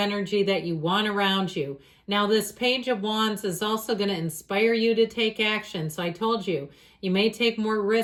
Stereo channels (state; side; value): identical; both; correlation 1.00